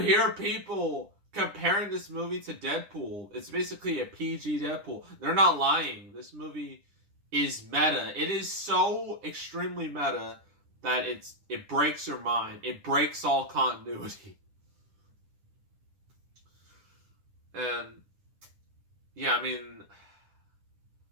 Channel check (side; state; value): left; late; 10 ms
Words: people comparing this movie to Deadpool, it's basically a PG Deadpool. They're not lying. This movie is meta. It is so extremely meta that it breaks your mind. It breaks all continuity. And yeah,